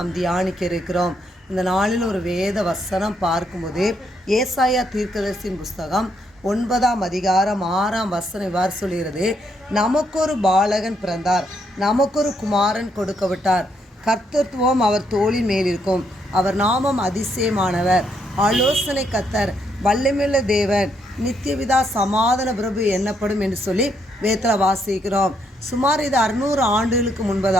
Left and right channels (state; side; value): normal; both; correlation 0.75